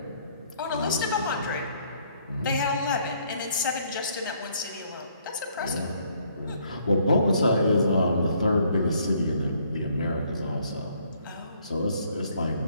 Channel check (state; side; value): inverted; both; correlation -0.66